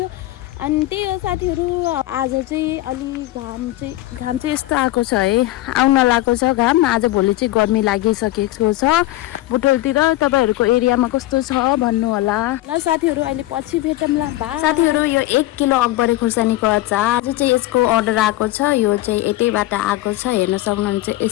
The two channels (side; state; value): right; quieter; 16.3 dB